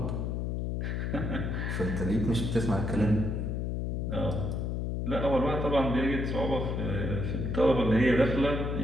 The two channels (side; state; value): left; noise; hum, 1 dB below the sound